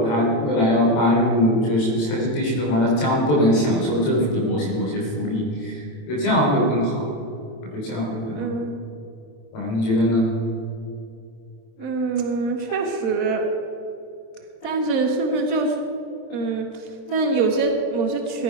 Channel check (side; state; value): right; late; 27 ms